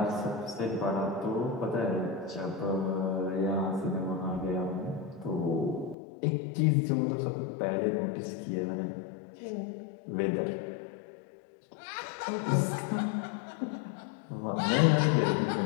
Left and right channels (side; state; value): right; drops out; at 6.0 s